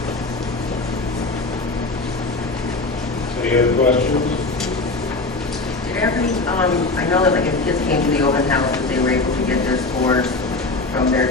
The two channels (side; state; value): right; quieter; 3.4 dB